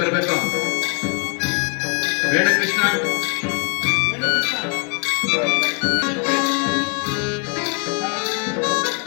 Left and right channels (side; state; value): right; quieter; 35.5 dB